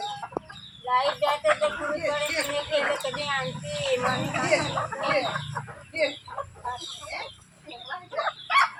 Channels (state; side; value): identical; both; correlation 1.00